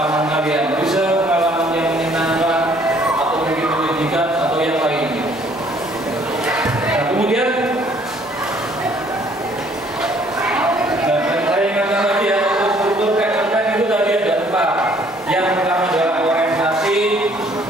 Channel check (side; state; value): both; normal; correlation 0.61